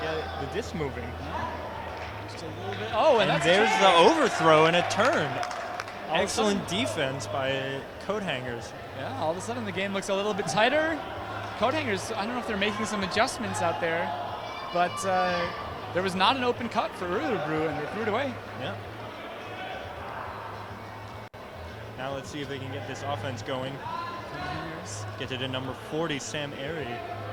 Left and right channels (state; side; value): identical; both; correlation 1.00